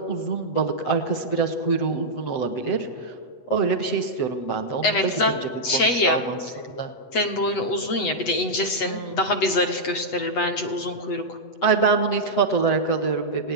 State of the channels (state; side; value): late; right; 8.1 ms